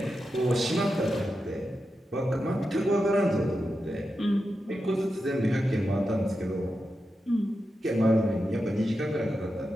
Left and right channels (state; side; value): normal; both; correlation 0.89